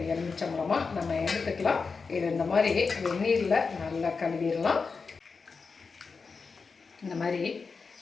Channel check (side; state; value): right; quieter; 4.8 dB